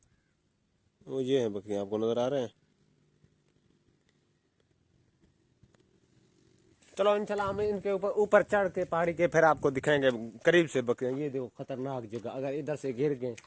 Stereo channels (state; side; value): identical; both; correlation 1.00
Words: वो ये है बकरियां, आपको नजर आ रहे हैं। चलो इंशाल्लाह हम इनके ऊपर ऊपर चढ़ के पहाड़ी के फिर आपको दिखाएंगे करीब से बकरियां। ये देखो, खतरनाक जगह। अगर इधर से गिर गए,